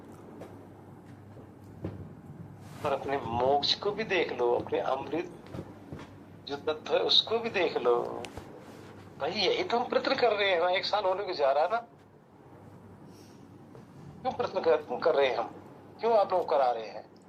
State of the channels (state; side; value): identical; both; correlation 1.00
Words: और अपने मोक्ष को भी देख लो, अपने अमृत जो तत्व है उसको भी देख लो। भाई यही तो हम प्रयत्न कर रहे हैं ना, 1 साल होने को जा रहा है ना। क्यों प्रयत्न कर रहे हैं हम? क्यों आप लोग करा रहे हैं?